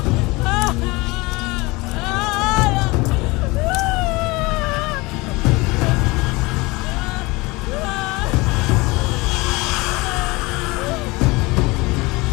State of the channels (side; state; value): right; quieter; 23.5 dB